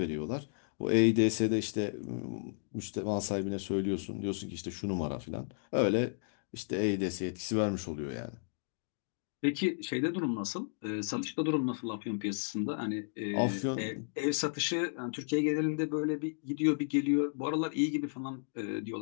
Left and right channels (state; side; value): silent; right; digital silence